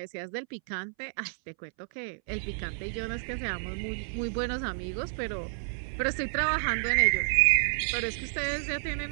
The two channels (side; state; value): left; silent; 58 dB below the other